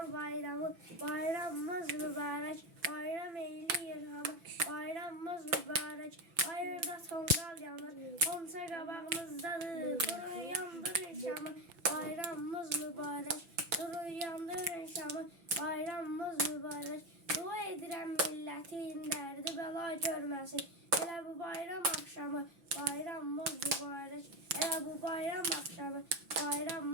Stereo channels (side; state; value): left; late; 6.0 ms